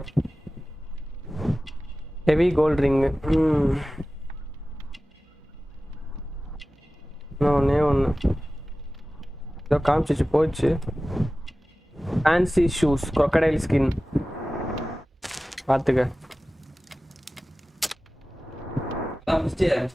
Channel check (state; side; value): normal; both; correlation 0.96